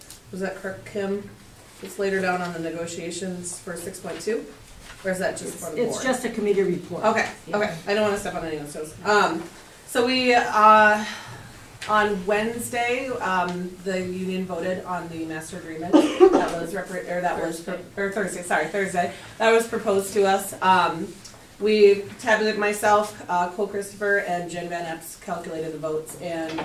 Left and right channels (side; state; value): both; identical; correlation 1.00